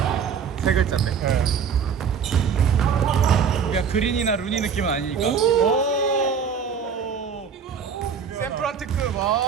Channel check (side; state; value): left; quieter; 6.7 dB